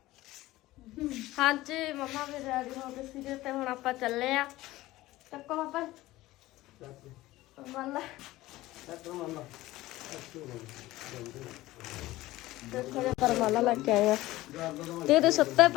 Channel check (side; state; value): right; quieter; 17.4 dB